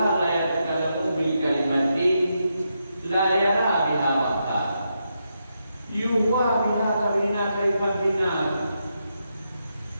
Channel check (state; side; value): inverted; both; correlation -0.83